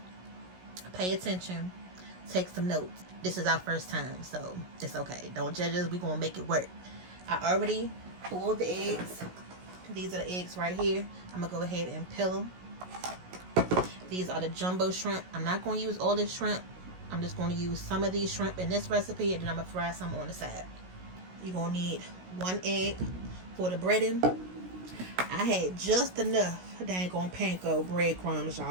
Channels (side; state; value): left; late; 16 ms